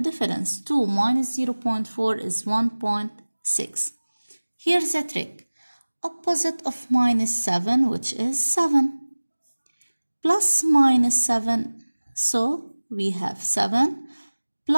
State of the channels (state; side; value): inverted; both; correlation -1.00